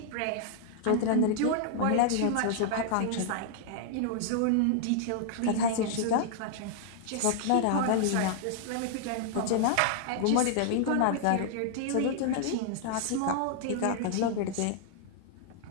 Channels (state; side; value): different; both; correlation -0.01